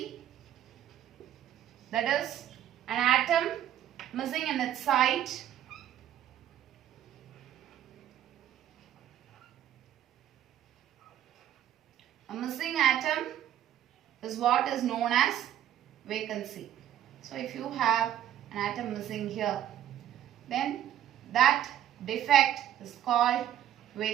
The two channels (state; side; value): quieter; left; 11.4 dB